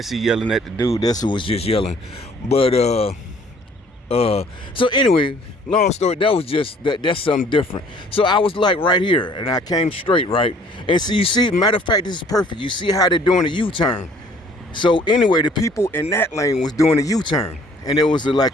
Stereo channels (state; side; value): normal; both; correlation 0.57